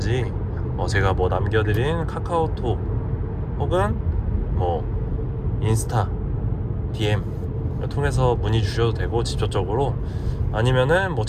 제가 뭐 남겨드린 카카오톡 혹은 뭐 인스타 DM 통해서 문의 주셔도 되고, 직접적으로 아니면은 뭐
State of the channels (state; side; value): identical; both; correlation 1.00